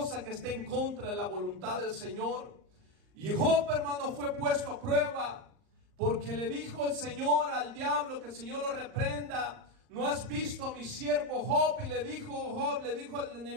que esté en contra de la voluntad del Señor. Y Job, hermano, fue puesto a prueba, porque le dijo el Señor al diablo, que el Señor lo reprenda. ¿No has visto a mi siervo Job? Y le dijo al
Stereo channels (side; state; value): left; late; 39 ms